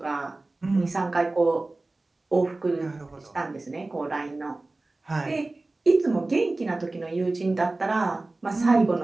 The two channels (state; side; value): quieter; left; 3.1 dB